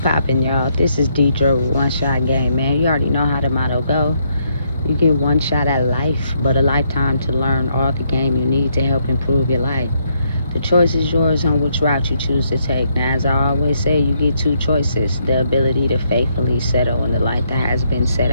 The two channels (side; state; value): both; inverted; correlation -0.74